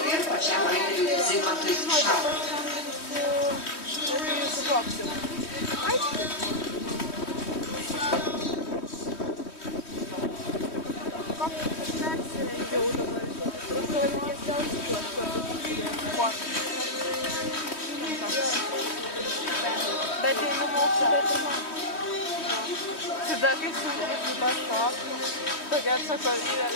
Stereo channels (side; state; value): right; late; 3.1 ms